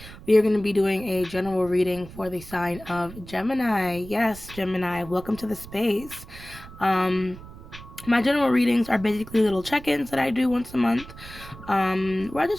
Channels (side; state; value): right; noise; rumble, 16 dB below the sound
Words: we are going to be doing a general reading for the sign of Gemini. Yes, Gemini, welcome to the space. My general readings are basically little check-ins that I do once a month. Where I